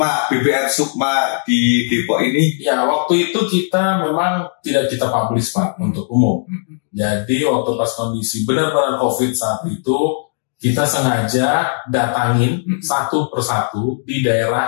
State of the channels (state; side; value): silent; right; digital silence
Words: BPR Sukma di Depok ini. Ya, waktu itu kita memang tidak kita publish Pak untuk umum. Jadi waktu pas kondisi benar-benar COVID saat itu, kita sengaja datangin satu persatu di